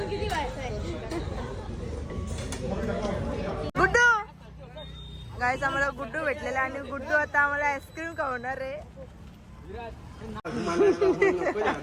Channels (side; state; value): both; identical; correlation 1.00